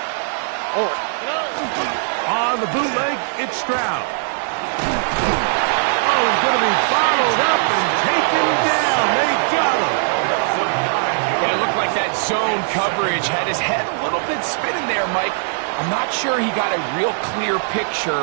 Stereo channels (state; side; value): silent; left; digital silence